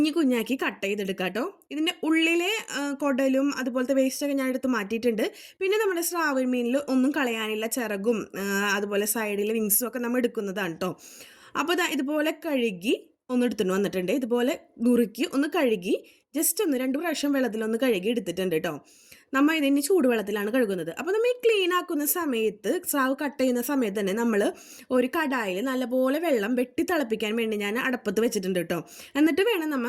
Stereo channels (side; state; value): both; identical; correlation 1.00